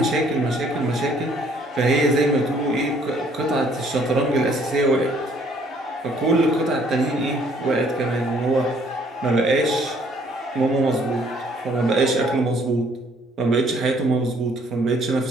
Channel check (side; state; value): both; normal; correlation 0.62